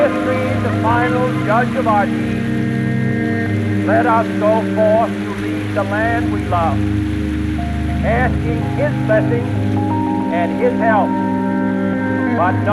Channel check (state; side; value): identical; both; correlation 1.00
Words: the final judge of our deeds, let us go forth to lead the land we love, asking His blessing and His help, but